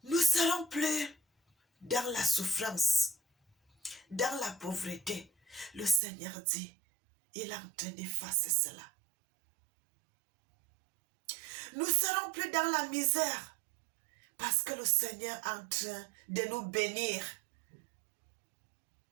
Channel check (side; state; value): left; drops out; at 6.0 s